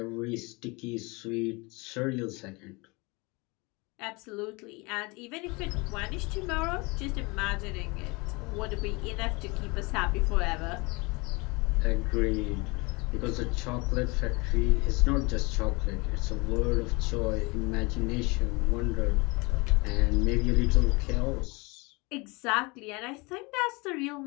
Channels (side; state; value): right; quieter; 26.6 dB